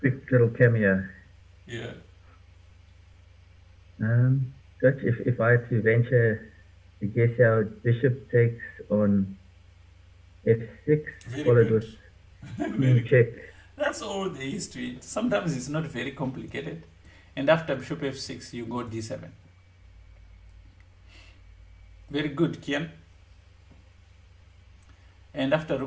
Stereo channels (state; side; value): identical; both; correlation 1.00